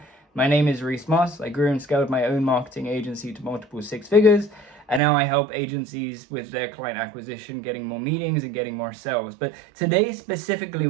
my name is Reece. I grew and scaled my own marketing agency to multiple six figures, and now I help agencies with their client acquisition, getting more meetings and getting more sales. But today specifically,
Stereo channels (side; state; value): left; drops out; at 5.0 s